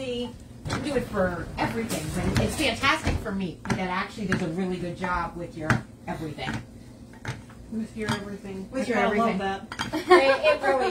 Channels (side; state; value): both; identical; correlation 1.00